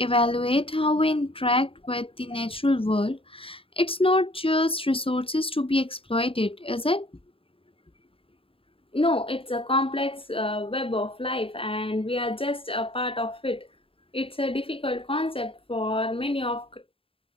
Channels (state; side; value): late; right; 0.27 ms